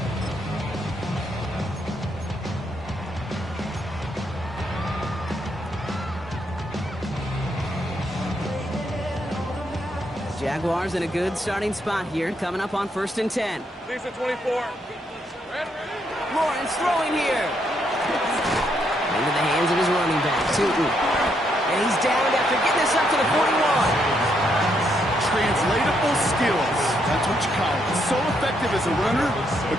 Jaguars in a good starting spot here, coming up on 1st and 10. These are 24. Lawrence throwing here. Into the hands of his running back, Tootin. And he's down after getting this up to the 41. Translatable skills. That's what you call it. So effective as a runner,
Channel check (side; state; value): both; normal; correlation 0.76